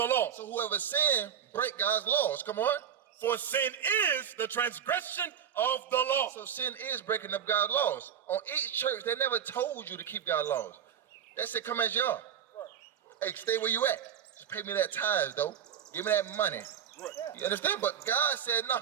law. So whoever sin, break God's laws. Come on. For sin is the transgression of the law. So sin is breaking up God's laws. On each church, they never told you to keep God's laws. They said, come as you are. Hey, stay where you at. Just pay me that tithes, though. Give me that money. You understand? But God said,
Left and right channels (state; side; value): quieter; left; 8.8 dB